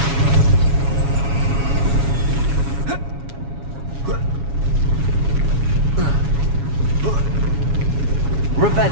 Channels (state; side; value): late; left; 7.2 ms